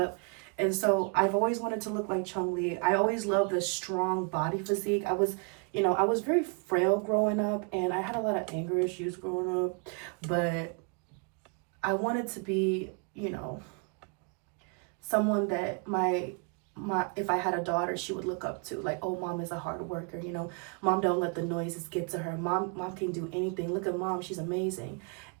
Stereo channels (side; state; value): left; quieter; 36.6 dB